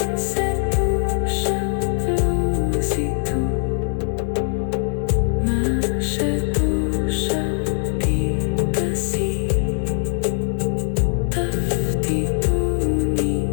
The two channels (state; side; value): silent; right; digital silence